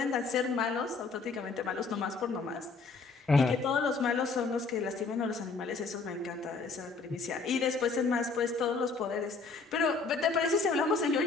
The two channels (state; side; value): quieter; right; 4.3 dB